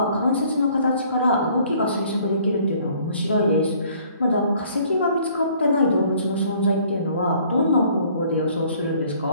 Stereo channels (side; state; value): both; inverted; correlation -0.58